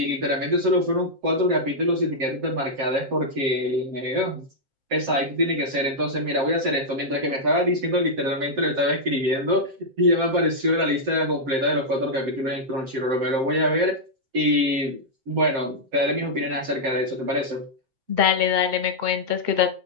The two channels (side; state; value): left; late; 7.6 ms